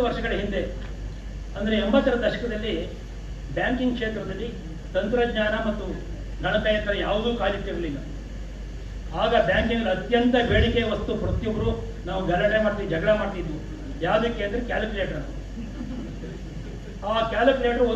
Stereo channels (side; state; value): both; identical; correlation 1.00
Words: ವರ್ಷಗಳ ಹಿಂದೆ ಅಂದರೆ 80ರ ದಶಕದಲ್ಲಿ ಬ್ಯಾಂಕಿಂಗ್ ಕ್ಷೇತ್ರದಲ್ಲಿ ತಂತ್ರಜ್ಞಾನ ಮತ್ತು ಗಣಕಯಂತ್ರ ಯಾವುದೂ ಕಾಲಿಟ್ಟಿರಲಿಲ್ಲ. ಆಗ ಬ್ಯಾಂಕಿಂಗ್ ಅತ್ಯಂತ ಬೇಡಿಕೆ ವಸ್ತು ಪ್ರತಿಯೊಬ್ಬರು ನಾವು ಗಲಾಟೆ ಮಾಡ್ತೀವಿ, ಜಗಳ ಮಾಡ್ತಿದ್ವು. ಯಾವುದಕ್ಕೆ ಅಂದರೆ ಕ್ಯಾಲ್ಕುಲೇಟರ್. ಆ ಕ್ಯಾಲ್ಕುಲೇಟರ್